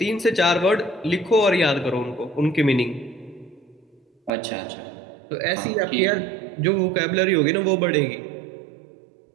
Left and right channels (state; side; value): drops out; left; at 4.3 s